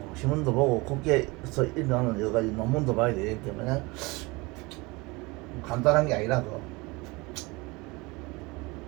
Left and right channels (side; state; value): left; quieter; 24.6 dB